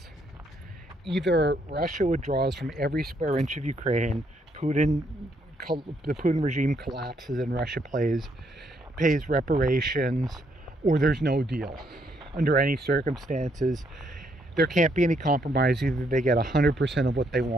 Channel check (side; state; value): both; normal; correlation 0.73